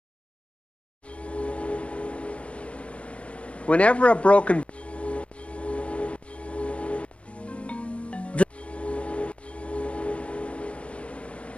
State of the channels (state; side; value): late; right; 0.061 ms